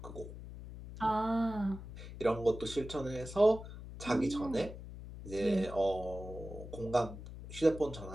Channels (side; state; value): left; noise; hum, 12 dB below the sound